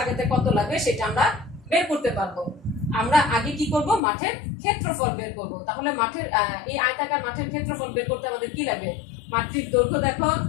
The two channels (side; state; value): right; drops out; at 4.0 s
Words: কত লাগবে সেটা আমরা বের করতে পারবো। আমরা আগে কি করব? মাঠের ক্ষেত্রফল বের করব। তাহলে মাঠের এই আয়তাকার মাঠের ক্ষেত্রফল বের করতে আমাদের কি লাগে? মাঠটির দৈর্ঘ্য দেখো